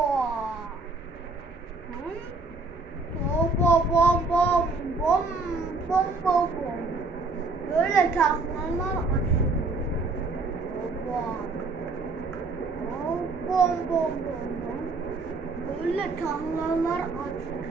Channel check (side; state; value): left; quieter; 3.7 dB